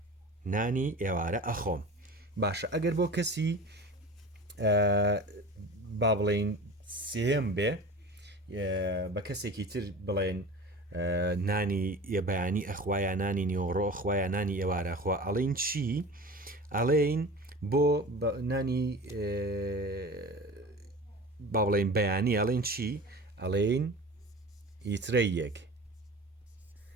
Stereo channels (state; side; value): normal; both; correlation 0.35